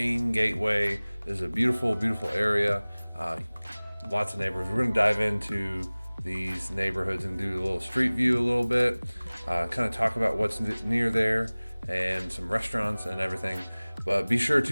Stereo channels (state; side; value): inverted; both; correlation -1.00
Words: gateway. This is a beautiful, beautiful area. Lots of neighborhoods. We're going to dive into these neighborhoods and do a little street view a little bit, kind of talk about what's near there and some restaurants and everything. But be sure